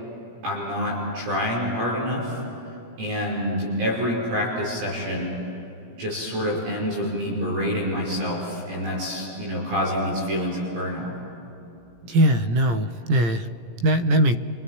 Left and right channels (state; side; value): late; left; 17 ms